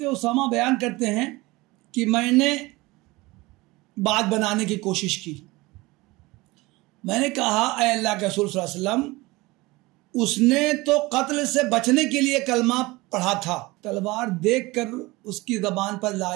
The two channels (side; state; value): left; quieter; 21.7 dB